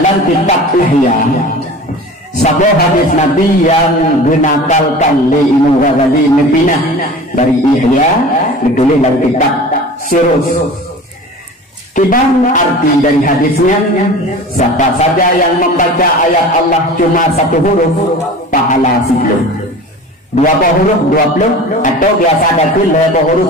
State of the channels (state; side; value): normal; both; correlation 0.38